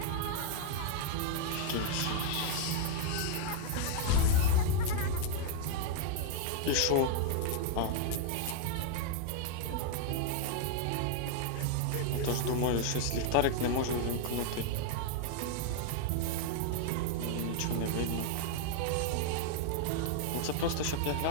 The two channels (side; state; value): both; different; correlation 0.00